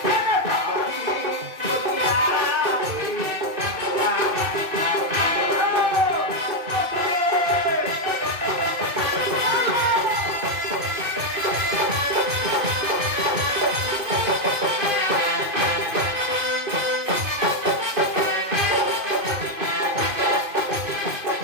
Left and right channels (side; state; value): left; late; 2.5 ms